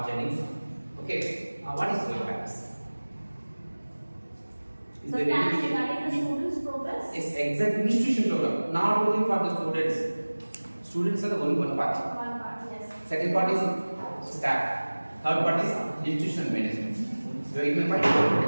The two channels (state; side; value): inverted; both; correlation -1.00